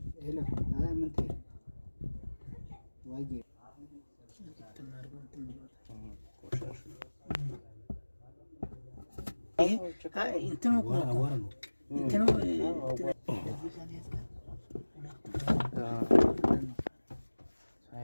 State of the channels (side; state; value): both; inverted; correlation -1.00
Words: ሄሎ ምን ትይ ዋዬ እንትኑ